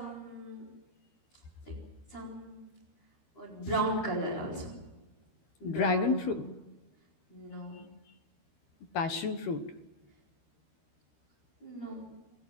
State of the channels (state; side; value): late; right; 13 ms